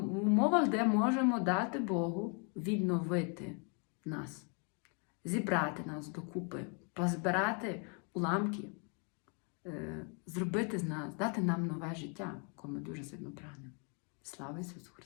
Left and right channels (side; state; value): right; quieter; 38.0 dB